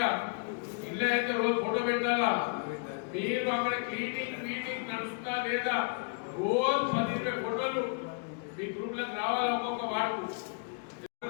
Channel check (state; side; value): quieter; right; 34.2 dB